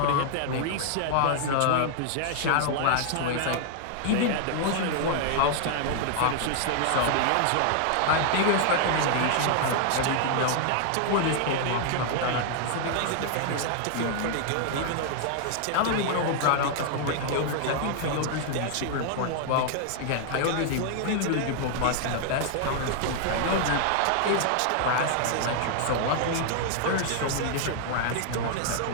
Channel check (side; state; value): both; different; correlation 0.00